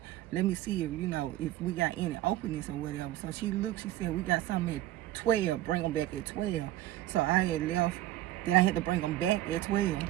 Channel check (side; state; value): left; quieter; 14.6 dB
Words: let me see if, if we got any openings or whatever. So she looked, she said, we got something at 12, bring them back at 12. So I had left, then I had to bring them back at 12.